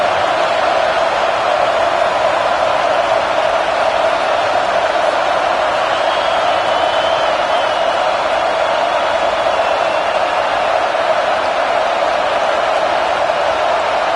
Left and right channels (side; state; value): both; identical; correlation 1.00